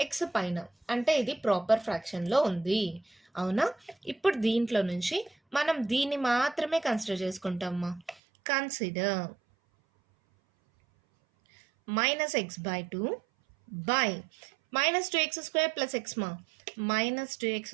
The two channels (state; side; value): drops out; left; at 8.2 s